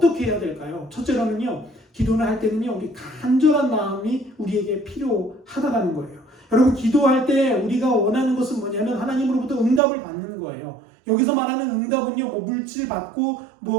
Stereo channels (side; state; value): left; drops out; at 9.8 s